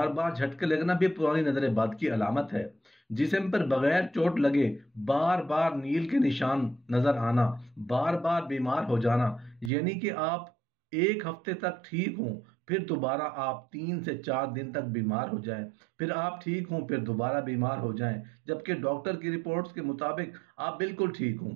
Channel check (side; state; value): left; drops out; at 9.7 s